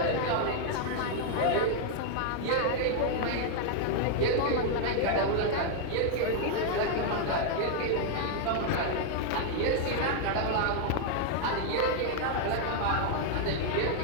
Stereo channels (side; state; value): both; different; correlation 0.00